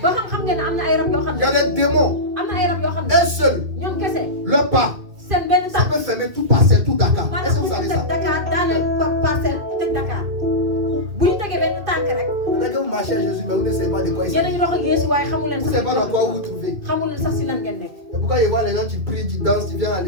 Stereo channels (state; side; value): late; left; 2.2 ms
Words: ba xam ngeen ne am na ay rab yoo xam Il ne. y a des démons. am na ay rab yoo xam ne. Un seul, ñoom kese. le pas, seen benn ça tànk. peut fermer tout Parcelles, tout Dakar. Est-ce que maanaam vous bu savez ñu ça? teg Dakar daaneel parcelle tëj Dakar. bu ñu tegee benn tànk rek. Peut-être que vous marchez à Jésus, mais vous ne savez pas de quoi il yéen a s'agit. ngi dox ak Yeesu waaye xamu leen Vous ne savez pas dans quoi vous vous trouvez. xamu leen sax si lan ngeen nekk. Et pourquoi il voit les gens qui prient, qui dansent, qui viennent à